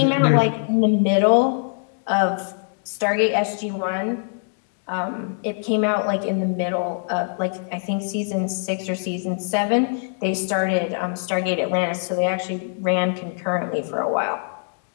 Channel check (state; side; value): silent; right; digital silence